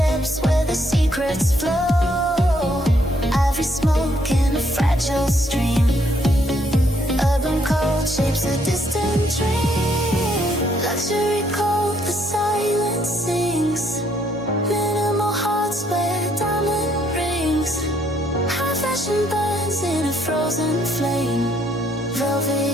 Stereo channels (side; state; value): both; normal; correlation 0.70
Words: where the secrets flow, ivory smoke in a fragile stream, urban cold shapes a distant dream, luxury cold, the silence sings, minimal hearts wear diamond rings, high fashion burns in a frozen flame,